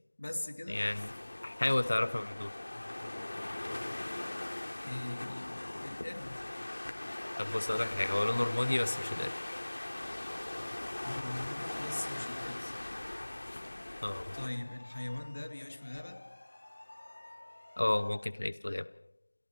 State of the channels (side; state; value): both; inverted; correlation -1.00